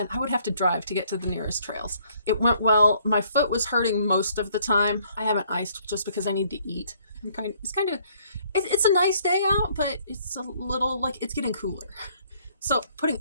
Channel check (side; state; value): both; inverted; correlation -0.64